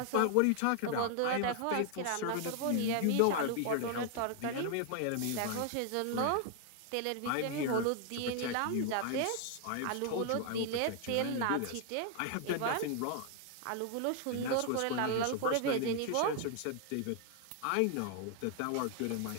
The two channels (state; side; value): different; both; correlation 0.00